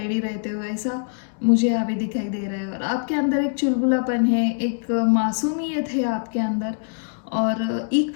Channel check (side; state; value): right; silent; digital silence